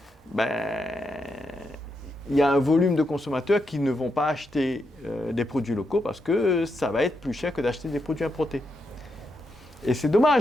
il y a un volume de consommateurs qui ne vont pas acheter des produits locaux parce que ça va être plus cher que d'acheter des produits importés. Et c'est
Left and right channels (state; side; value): normal; both; correlation 0.83